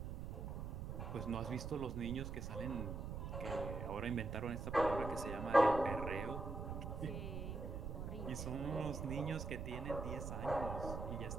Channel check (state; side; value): noise; right; rumble, 5 dB below the sound